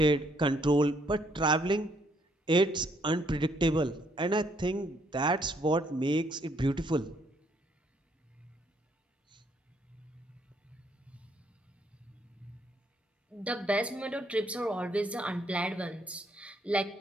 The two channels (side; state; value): both; normal; correlation 0.69